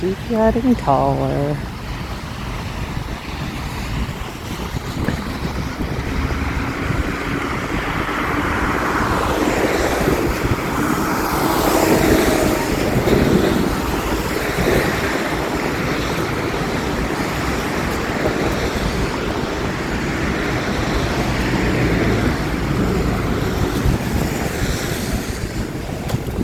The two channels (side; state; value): both; identical; correlation 1.00